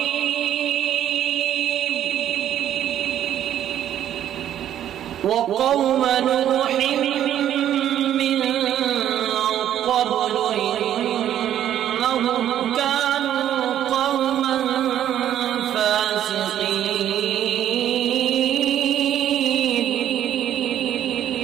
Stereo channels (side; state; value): left; quieter; 11.0 dB